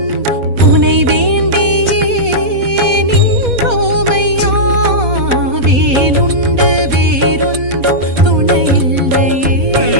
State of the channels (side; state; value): left; late; 4.1 ms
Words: உனை வேண்டியே நின்றோமையா வேலுண்டு வேறொன்றும் துணையில்லையே